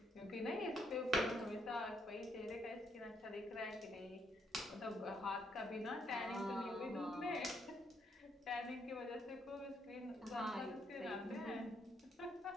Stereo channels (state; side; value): normal; both; correlation 0.74